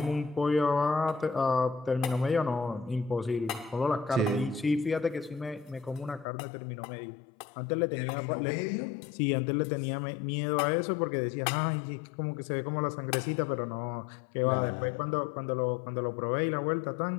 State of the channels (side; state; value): right; drops out; at 6.2 s